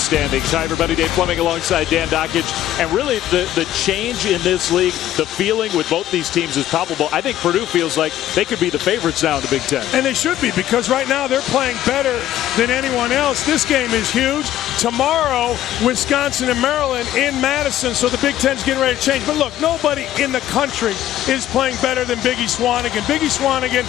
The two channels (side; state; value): right; quieter; 12.8 dB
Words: Hi, everybody. Dave Fleming alongside Dan Dockage. And really, the change in this league, the feeling with both these teams is palpable. I think Purdue feels like they could be the favorites now in the Big Ten. And they should be, because right now they're playing better than anyone else. This game is huge. Tomorrow, Wisconsin and Maryland in Madison. So the Big Ten's getting ready to change. But look, nobody in the country is playing better than Biggie Swanigan. Biggie Swanigan